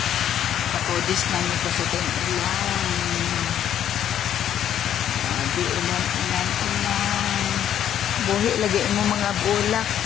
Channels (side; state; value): right; quieter; 10.3 dB